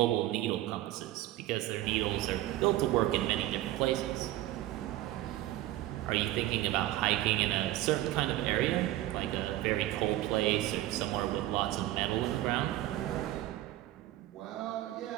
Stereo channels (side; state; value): left; quieter; 15.3 dB